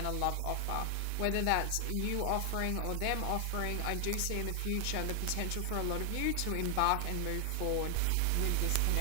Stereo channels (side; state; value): both; different; correlation 0.00